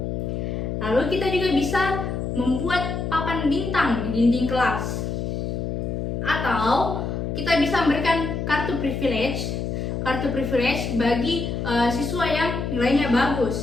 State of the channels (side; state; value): left; noise; hum, 3 dB below the sound